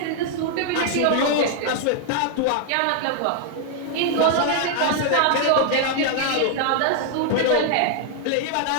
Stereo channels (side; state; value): both; different; correlation 0.00